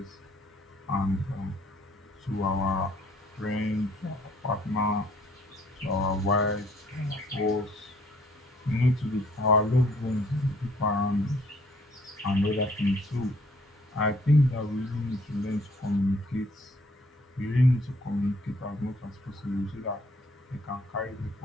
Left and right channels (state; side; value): normal; both; correlation 0.61